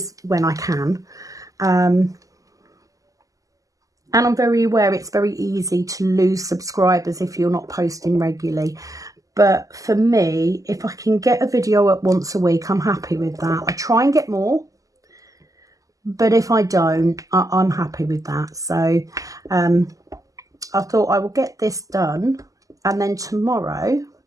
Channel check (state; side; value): late; left; 0.17 ms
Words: when I can. And I'm very aware it's very easy to lose subscribers if you're not posting regularly. But for me, if I can get a video up once a week, I'm happy with that. I try and get more. But if I don't, I'm happy with that. So I thought I will get this done. And then tomorrow,